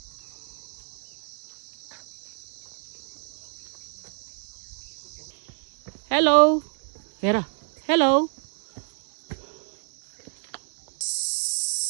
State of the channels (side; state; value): left; silent; 57 dB below the other